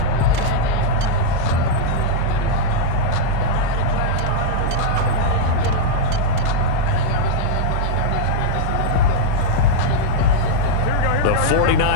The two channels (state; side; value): different; both; correlation -0.01